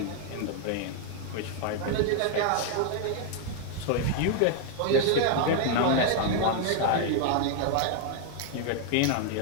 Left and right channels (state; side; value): different; both; correlation 0.00